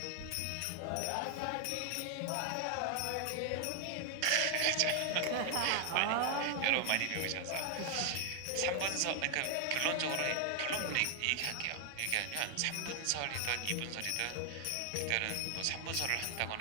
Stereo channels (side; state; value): both; different; correlation 0.00